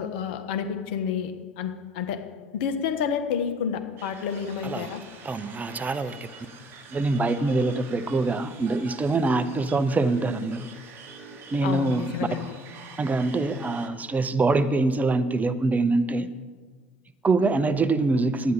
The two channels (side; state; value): both; normal; correlation 0.66